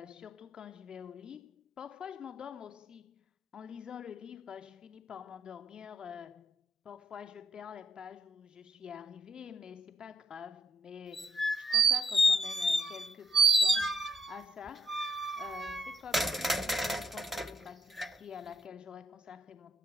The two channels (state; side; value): normal; both; correlation 0.75